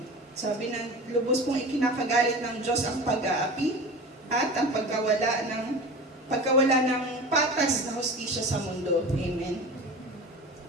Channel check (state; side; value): normal; both; correlation 0.33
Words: Sabi ng lubos pong ikinakagalit ng Diyos ang pag-aapi at ang pagkawala ng patas na hustisya sa mundo. Amen.